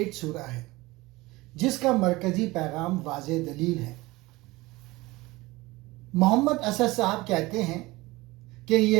सूरा है जिसका मरकजी पैगाम वाज़े दलील है। मोहम्मद असद साहब कहते हैं कि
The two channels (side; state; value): left; quieter; 20.8 dB